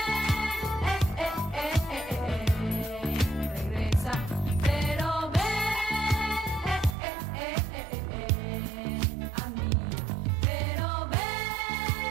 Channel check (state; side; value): drops out; left; at 7.0 s